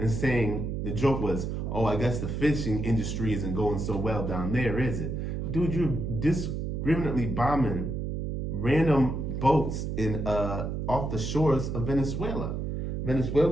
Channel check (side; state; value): right; noise; hum, 3 dB below the sound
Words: saying, the joke was, oh, I guess the fishing industry isn't going so well down there, is it? Dude, you're discriminately bombing random boats in off the shores of Venezuela.